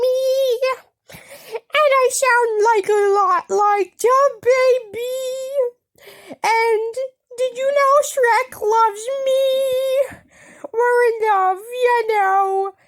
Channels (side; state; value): both; identical; correlation 1.00